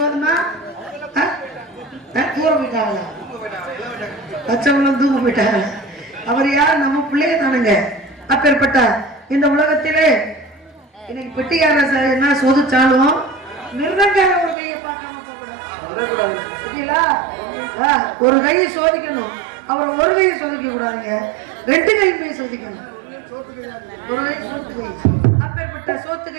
போதுமா? தூர போயிட்டாங்களா? பச்சவங்களும் தூங்க போயிட்டாங்க. அவர் யார்? நம்ம பிள்ளைய தானுங்க. அப்பேற்பட்ட இந்த உலகத்திலே இன்னைக்கு பெட்டியார என்ன சோதிச்சாலும் மிருதங்கார ஒரு கையை பார்க்காம போகக்கூடாது. ஒரு கையை சோதிக்கணும். அவர் ஒரு கையை சோதிக்க கூடாதுங்க, 2 கையுமே சோதிக்கணும். ஒரு கை சோத்து கை. அப்பேற்பட்ட சோத்து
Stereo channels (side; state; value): left; drops out; at 14.6 s